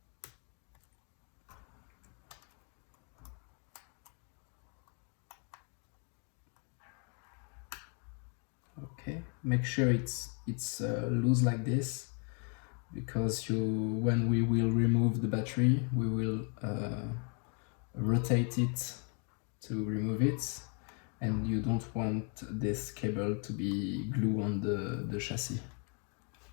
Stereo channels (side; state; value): right; quieter; 38.8 dB